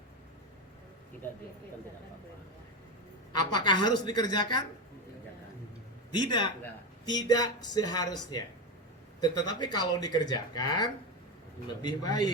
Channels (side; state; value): both; normal; correlation 0.16